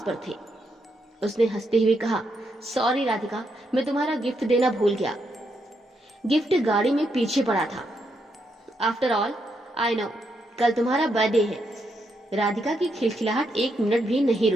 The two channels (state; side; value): normal; both; correlation 0.80